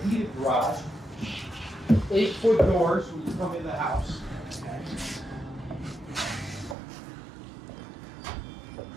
heated garage. 8-foot doors when you come in the house. Okay.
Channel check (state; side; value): drops out; left; at 6.8 s